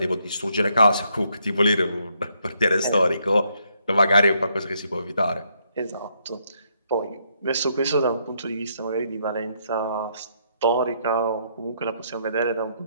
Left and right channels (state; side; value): inverted; both; correlation -0.74